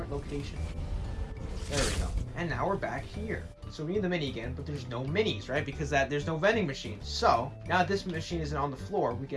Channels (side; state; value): both; identical; correlation 1.00